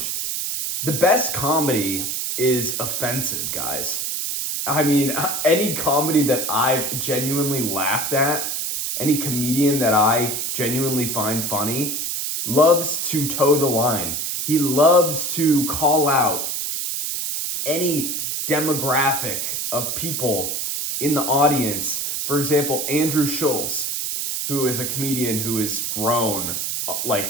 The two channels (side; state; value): right; noise; hiss, 2 dB below the sound